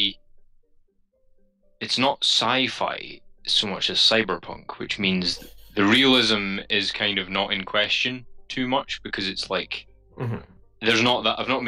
it's not sci-fi so much as cyberpunk, which means the realism is kind of not in question too much because it's like. Mm-hmm. There's not that I've not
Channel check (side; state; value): both; identical; correlation 1.00